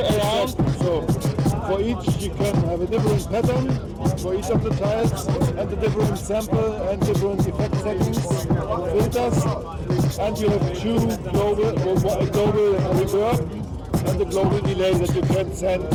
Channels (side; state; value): both; identical; correlation 1.00